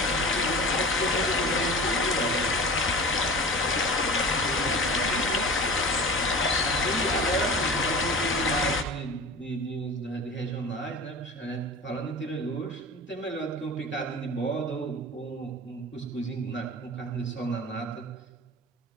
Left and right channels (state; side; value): normal; both; correlation 0.35